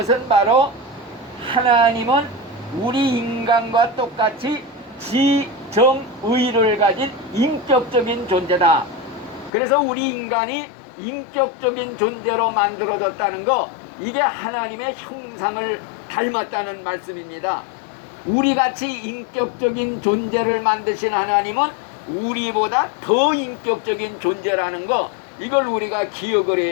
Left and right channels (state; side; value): drops out; right; at 9.5 s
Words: 바로 하나님은 우리 인간과 똑같이 지정의를 가진 인격적인 존재다. 그래서 우리 인간이 인격적인 존재로 만들어졌다는 거, 이게 하나님의 형상을 닮았다는 말씀입니다. 우리같이 인격적인 존재를 만드신 하나님은 우리보다 더 인격적인 존재라는 거, 이걸 우리가 기억을